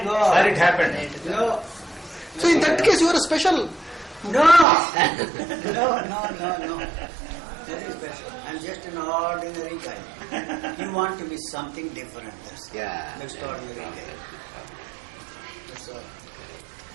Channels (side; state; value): left; drops out; at 4.7 s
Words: Sir, it go. happened. No. So in that case, you are a special. No! No. That is special. I'm just an ordinary guy. You want to be something different. That's Yeah. extraordinary guy. That's all.